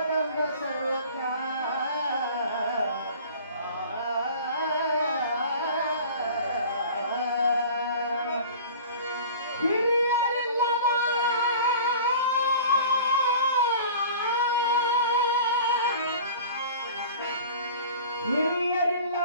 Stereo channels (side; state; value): both; inverted; correlation -0.42